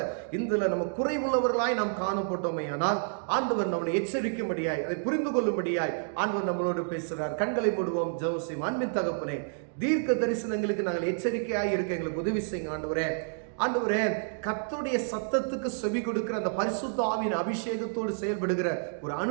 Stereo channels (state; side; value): silent; left; digital silence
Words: இதுல நம்ம குறைவுள்ளவர்களாய் நாம் காணப்பட்டோமே, ஆனால் ஆண்டவர் நம்மளை எச்சரிக்கும்படியாய் அதை புரிந்து கொள்ளும்படியாய் ஆண்டவர் நம்மளோடு பேசுகிறார். கண்களை மூடுவோம், ஜெபம் செய்வோம். அன்பின் தகப்பனே, தீர்க்க தரிசனங்களுக்கு நாங்கள் எச்சரிக்கையாய் இருக்க எங்களுக்கு உதவி செய்யுங்க ஆண்டவரே. ஆண்டவரே, கர்த்தருடைய சத்தத்துக்கு செவி கொடுக்கிற அந்த பரிசுத்த ஆவியின் அபிஷேகத்தோடு செயல்படுகிற ஒரு